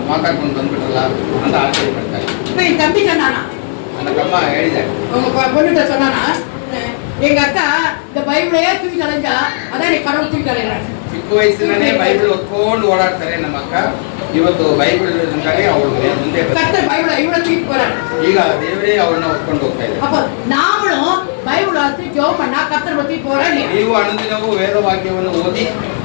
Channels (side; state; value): right; silent; digital silence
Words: ಮಾತಾಡ್ಕೊಂಡು ಬಂದ್ಬಿಟ್ರಲ್ಲ ಅಂತ ಆಶ್ಚರ್ಯ ಪಡ್ತಾರೆ. இப்ப என் தம்பி சொன்னானா, ನನ್ನ ತಮ್ಮ ಹೇಳಿದ್ದಾರೆ, உங்க பொண்ணுகிட்ட சொன்னானா, எங்க அக்கா இந்த பைபிளையே தூக்கி தலைஞ்சா அதான் நீ கடவுள் தூக்கி தலைறாங்க. ಚಿಕ್ಕ ವಯಸ್ಸಿನಲ್ಲೇ ಬೈಬಲ್ ಹೊತ್ಕೊಂಡು ಓಡಾಡ್ತಾರೆ ನಮ್ಮ ಅಕ್ಕ. ಇವತ್ತು ಬೈಬಲ್ ಅವಳು ಮುಂದೆ கர்த்தர் பைபிளை இவ்வளவு தூக்கி போறாரு. ಈಗ ದೇವರೇ ಅವ್ರನ್ನ ಹೊತ್ಕೊಂಡು ಹೋಗ್ತಾ ಇದ್ದಾರೆ. அப்ப நாமளும் பைபிள் வாசி ஜெபம் பண்ணா கர்த்தர் பத்தி போறாரு. ನೀವು ಅನುದಿನವೂ ವೇದವಾಕ್ಯವನ್ನು ಓದಿ